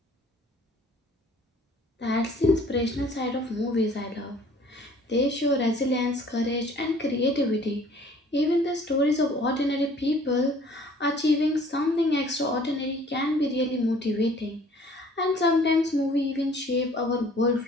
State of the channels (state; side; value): normal; both; correlation 0.54